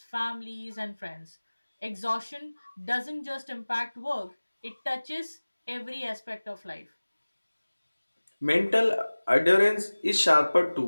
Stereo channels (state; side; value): inverted; both; correlation -1.00